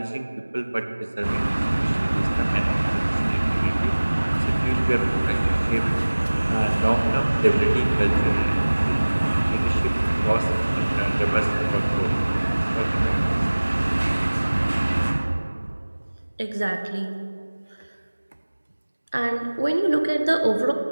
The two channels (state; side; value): inverted; both; correlation -1.00